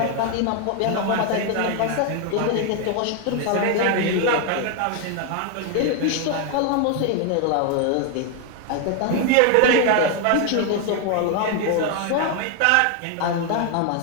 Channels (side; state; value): both; different; correlation 0.00